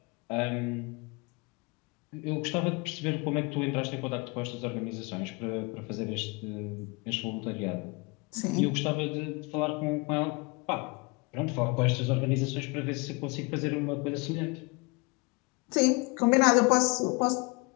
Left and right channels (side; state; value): right; quieter; 28.3 dB